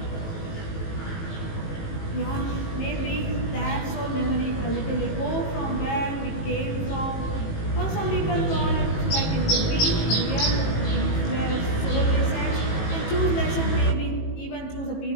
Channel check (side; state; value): right; late; 18 ms